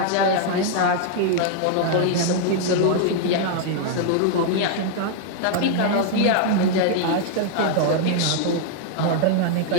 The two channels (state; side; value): different; both; correlation -0.01